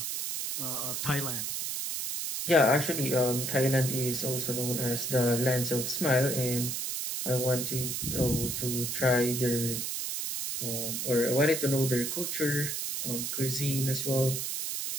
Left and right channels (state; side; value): noise; right; hiss, 2 dB below the sound